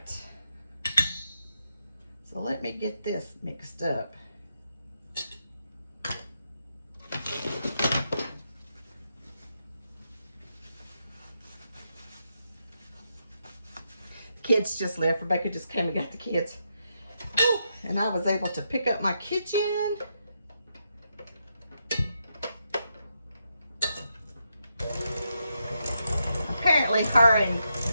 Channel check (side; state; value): both; inverted; correlation -0.82